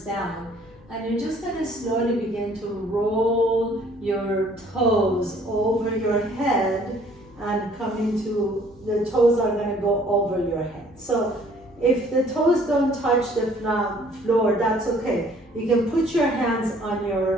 down. And you're just going to slowly begin to roll your toes over your head and come into, the toes are going to go over your head. So if the toes don't touch the floor, that's okay. You can put your hands on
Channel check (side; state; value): left; noise; hum, 29 dB below the sound